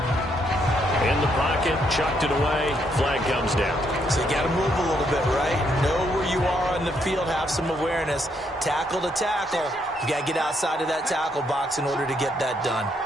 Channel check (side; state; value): both; normal; correlation 0.74